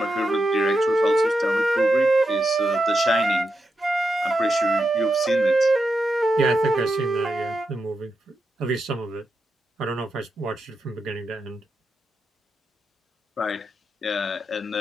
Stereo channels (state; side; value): normal; both; correlation 0.86